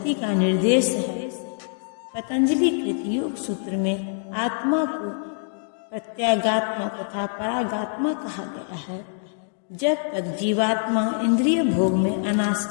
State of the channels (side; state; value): right; silent; digital silence